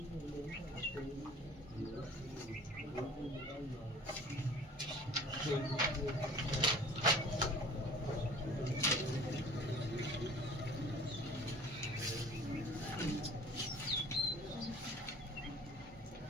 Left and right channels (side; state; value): both; normal; correlation 0.47